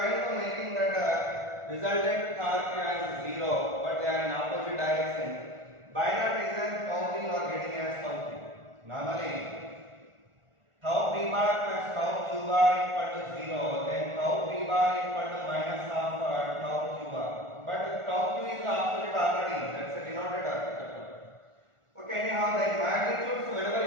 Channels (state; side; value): late; left; 1.4 ms